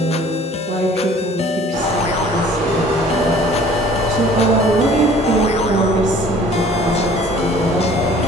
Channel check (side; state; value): both; normal; correlation 0.52